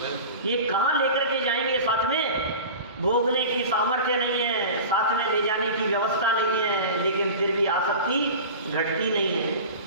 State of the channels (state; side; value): inverted; both; correlation -0.34